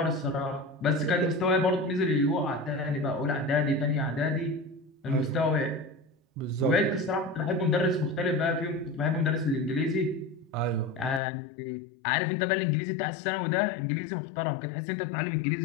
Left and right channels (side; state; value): right; drops out; at 11.2 s